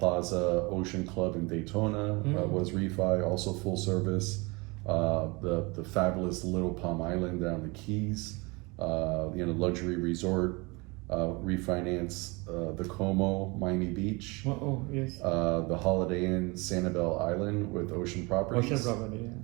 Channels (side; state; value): left; quieter; 26.7 dB